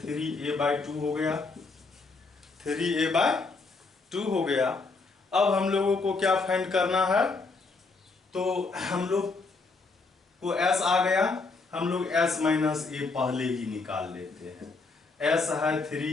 हो गया, 3a/2 हो गया। अब हम लोगों को क्या फाइंड करना है, तो हम लोग को s आ गया, हम लोग s माइनस ए पहले ही निकाल लेते हैं। s है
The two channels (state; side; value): quieter; right; 4.0 dB